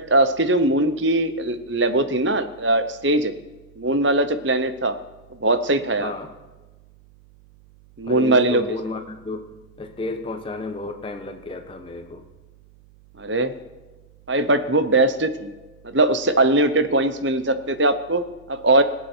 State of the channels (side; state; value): right; noise; hum, 28 dB below the sound